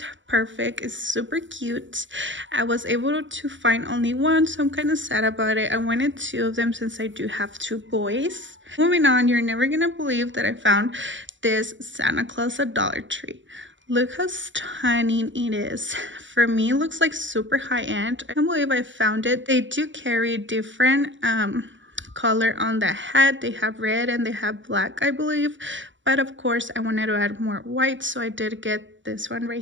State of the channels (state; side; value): late; left; 0.55 ms